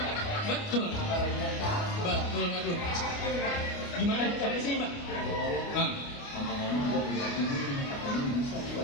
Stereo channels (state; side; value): late; right; 29 ms